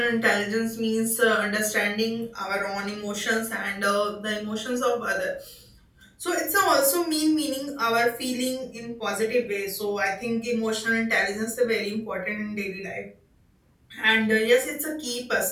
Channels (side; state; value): both; identical; correlation 1.00